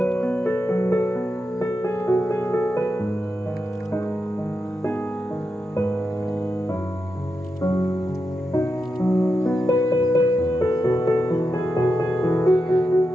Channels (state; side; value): normal; both; correlation 0.88